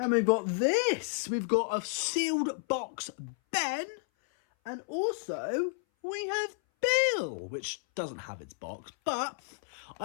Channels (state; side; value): silent; right; 57 dB below the other